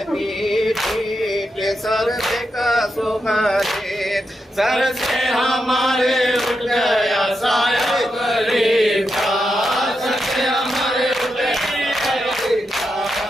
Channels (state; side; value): normal; both; correlation 0.86